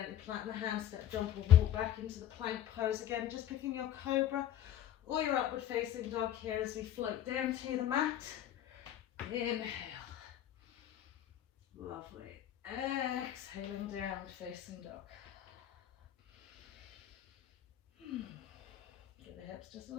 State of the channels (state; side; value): quieter; right; 11.4 dB